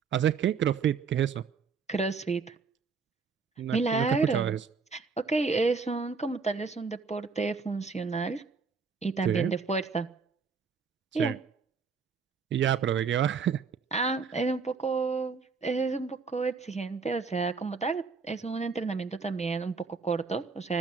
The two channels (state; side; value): quieter; left; 5.2 dB